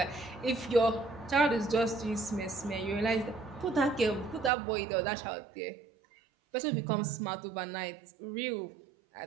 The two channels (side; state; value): left; drops out; at 4.5 s